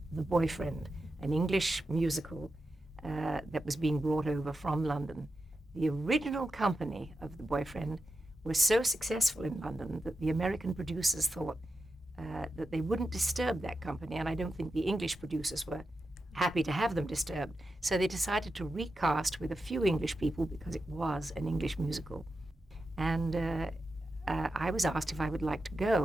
The Boyfriend, an English musical that was being brought over from London. The original company of The Boyfriend was so successful in London that the American producers thought that they wouldn't disturb that company, and I don't think the English producers were happy to have them disturbed. So they decided to recast with a few English people because it was an English musical. And I was asked if I would like to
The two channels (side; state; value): both; normal; correlation 0.89